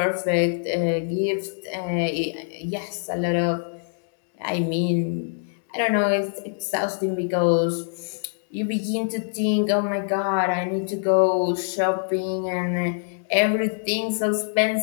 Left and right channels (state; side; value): silent; right; digital silence